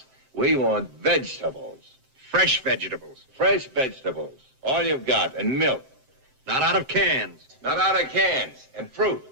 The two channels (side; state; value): left; late; 7.6 ms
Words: We want vegetables. Fresh vegetables. Fresh vegetables. All you've got. And milk. Not out of cans. Not out of cans. And fruit.